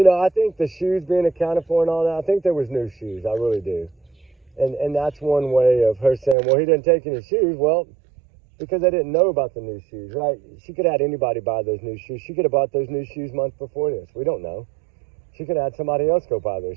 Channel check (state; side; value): drops out; left; at 6.4 s